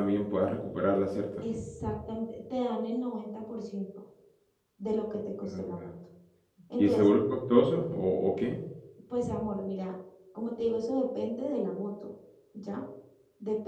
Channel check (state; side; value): identical; both; correlation 1.00